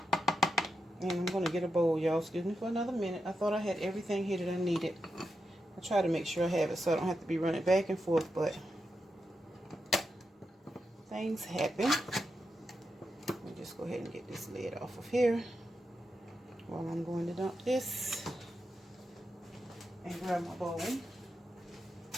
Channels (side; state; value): both; normal; correlation 0.87